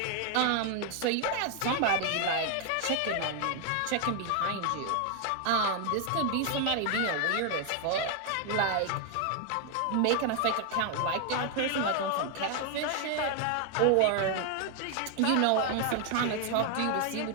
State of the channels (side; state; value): both; different; correlation 0.01